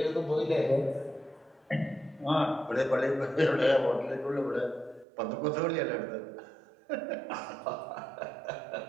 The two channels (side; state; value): left; drops out; at 5.1 s